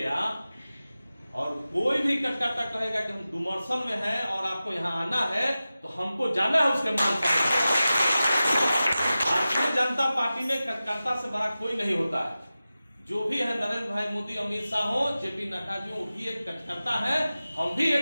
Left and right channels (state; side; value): inverted; both; correlation -0.95